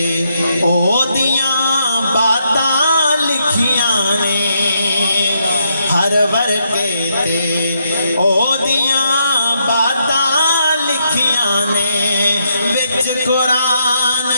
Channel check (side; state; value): both; inverted; correlation -0.77